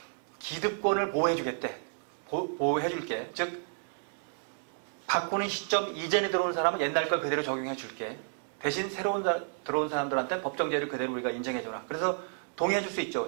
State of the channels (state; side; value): silent; left; digital silence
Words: 기득권을 보호해주겠대. 보호해줄게. 즉 바꾸는 시점 이전에 들어온 사람은 옛날 걸 그대로 적용해줄게. 대신 새로운 들어온 사람들한테 법정제를 그대로 우리가 인정해줘라. 그래서 동의해줄 수